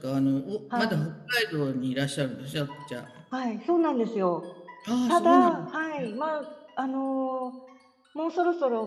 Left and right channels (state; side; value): identical; both; correlation 1.00